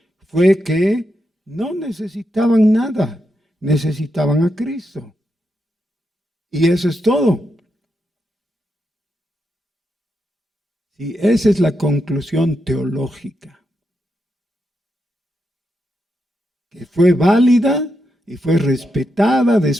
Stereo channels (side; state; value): both; normal; correlation 0.85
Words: fue que no necesitaban nada, necesitaban a Cristo. Y eso es todo. Y esa es la conclusión teológica, que fue válida y fue respetada